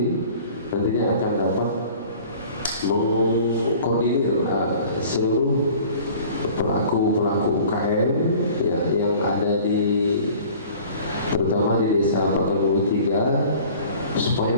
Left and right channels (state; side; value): inverted; both; correlation -0.47